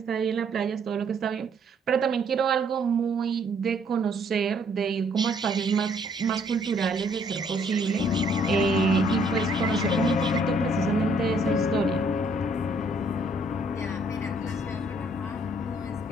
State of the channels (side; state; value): both; normal; correlation 0.65